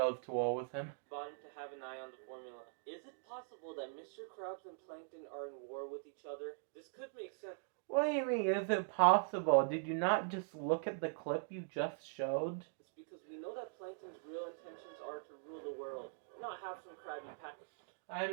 to war with him. Bottom to have an eye on the formula. Is it possible that Mr. Krabs and Plankton are in war with each other? This could make sense. What do you mean, is it possible? Did you not just look at the clip you just showed? It's because we know that Plankton's real intentions are to rule the world, not have some Krabby Patty I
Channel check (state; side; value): silent; left; digital silence